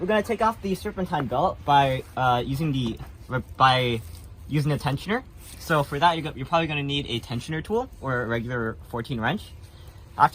going to take off the serpentine belt by using a tensioner. So for that, you're probably going to need a tensioner tool or a regular 14 wrench.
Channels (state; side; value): identical; both; correlation 1.00